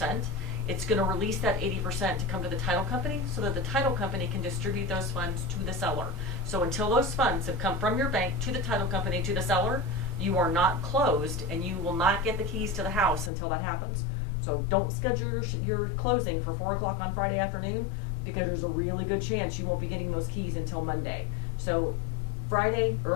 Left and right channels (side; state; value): right; drops out; at 13.3 s